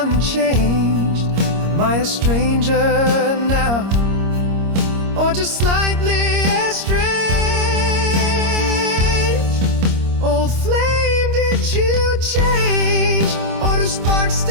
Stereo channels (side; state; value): left; late; 26 ms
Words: Am I a stranger now, or just slightly estranged? Old flame, did you change, or do sparks